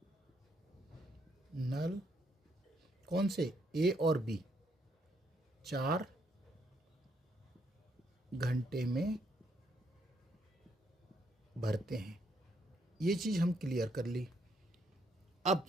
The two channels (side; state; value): both; normal; correlation 0.73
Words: नल कौन से? ए और बी 4 घंटे में भरते हैं। ये चीज़ हम क्लियर कर ली। अब